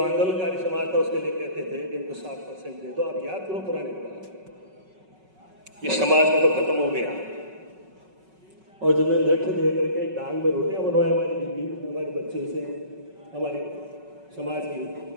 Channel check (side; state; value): left; late; 5.3 ms